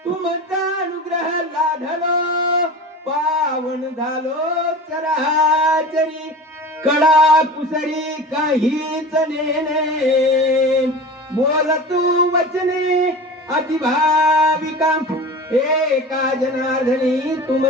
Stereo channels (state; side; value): normal; both; correlation 0.34